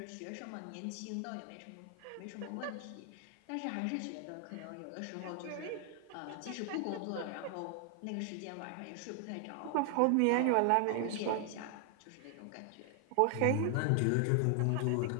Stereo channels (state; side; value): different; both; correlation 0.00